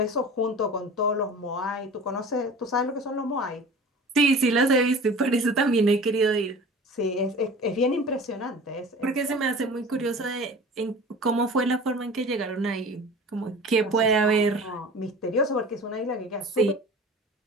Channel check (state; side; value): normal; both; correlation 0.40